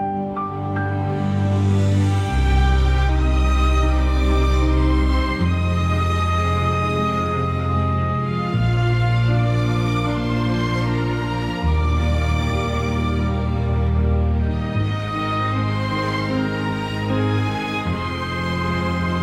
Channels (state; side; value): identical; both; correlation 1.00